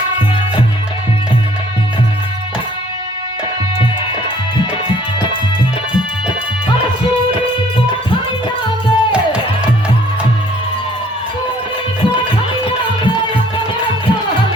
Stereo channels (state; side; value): normal; both; correlation 0.59